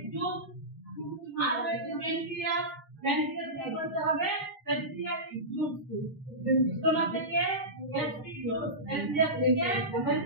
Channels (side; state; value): both; normal; correlation -0.17